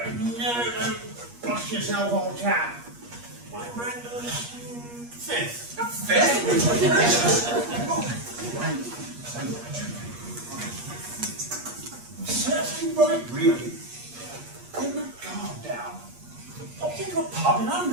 don't blush yourself, old chap. I'm Brenda's fifth. Fifth? Certainly right, really. Put my guard down. Popped into a pub in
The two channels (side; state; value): left; late; 8.4 ms